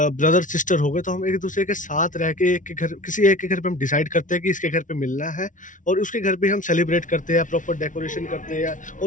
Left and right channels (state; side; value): late; right; 0.37 ms